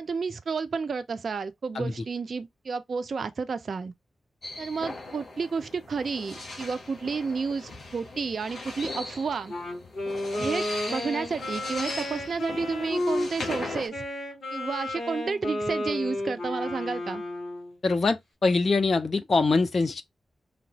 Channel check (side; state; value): both; normal; correlation 0.87